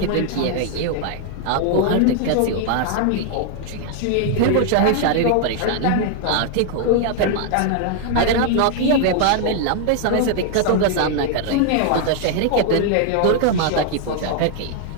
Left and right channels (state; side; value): different; both; correlation 0.00